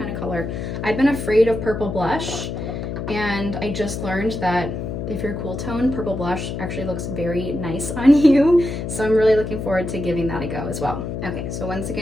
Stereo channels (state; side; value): noise; left; hum, 5 dB below the sound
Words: of color. I've been afraid of purple blush, and I just learned that if you're cool tone, purple blush actually looks very nice on you. So I'm really looking forward to giving that a go as well. Okay, so once